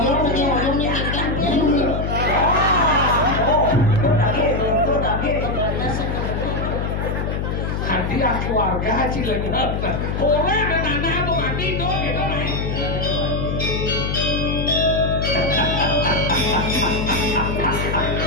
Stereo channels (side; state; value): left; noise; hum, 2 dB below the sound